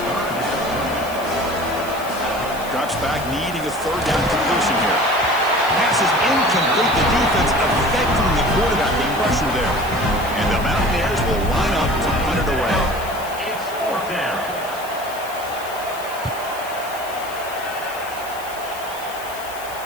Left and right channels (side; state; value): left; noise; hiss, 15 dB below the sound